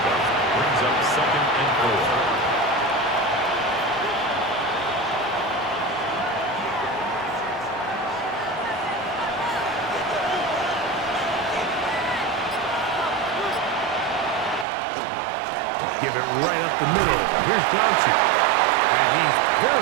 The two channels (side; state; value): left; drops out; at 14.7 s